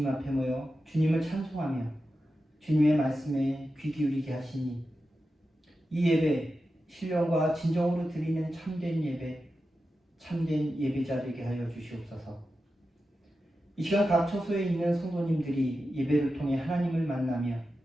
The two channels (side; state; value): both; normal; correlation 0.91